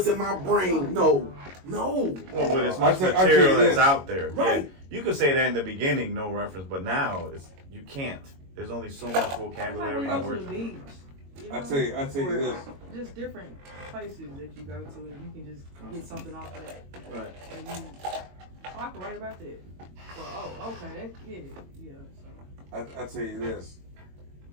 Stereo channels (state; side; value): late; left; 22 ms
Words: in my brain. No. Well, with as much material that's out there. Right. Yeah, you could say that in the beginning, no reference, but now you can't. There's only so much vocabulary and words. I tell you this. Just different places that you go to, and you can just get something off of that. Right. And I can write about that. Well, okay, yeah. So. I tell you this.